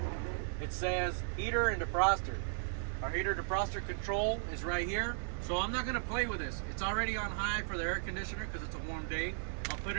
It says heater and defroster. Our heater defroster control is right here. So I'm not going to play with this. It's already on high for the air conditioner because it's a warm day. I'll put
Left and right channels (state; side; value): silent; left; 54 dB below the other